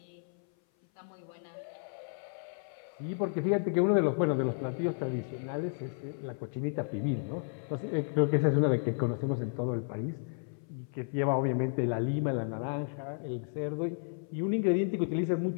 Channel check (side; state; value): right; silent; 56 dB below the other